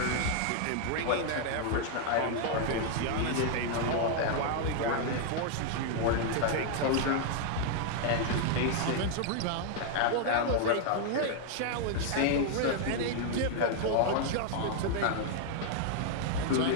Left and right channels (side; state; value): both; different; correlation 0.00